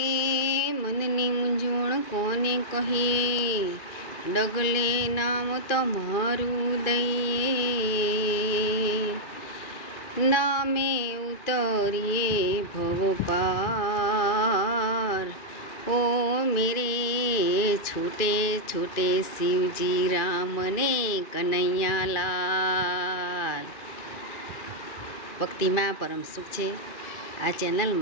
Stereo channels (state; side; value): late; right; 2.3 ms